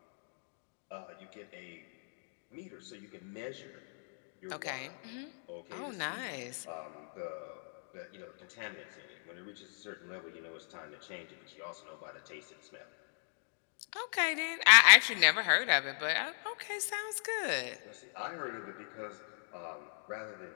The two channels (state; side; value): silent; right; digital silence